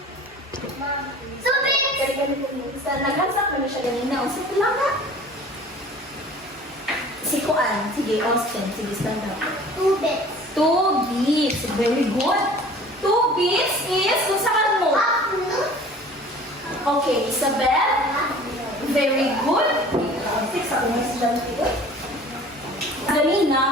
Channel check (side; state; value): both; normal; correlation 0.45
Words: Kaya ganun po mo. Naghansak na siya ganina. O, sige lang na. Si Kuan. Sige, Austin. Sige, stand up. 2 beats. Very good. 2 beats is kung saan mo. Okay, Isabel. Very good. Six ako na si Dante.